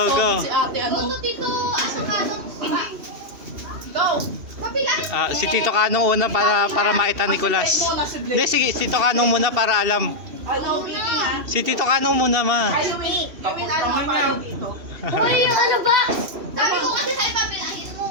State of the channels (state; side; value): late; left; 2.7 ms